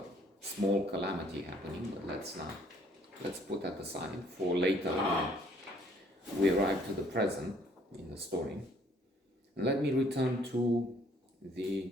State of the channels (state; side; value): normal; both; correlation 0.63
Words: small calamity happening, but let's put that aside for later when we arrive to the present in the story. And let me return to the